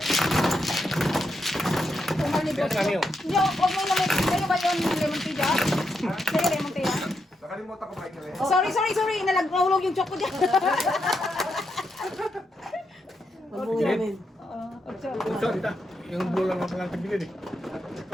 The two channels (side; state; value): both; normal; correlation 0.83